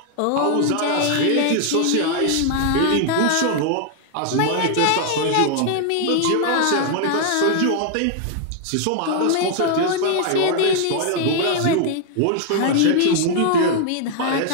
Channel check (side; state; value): both; different; correlation 0.00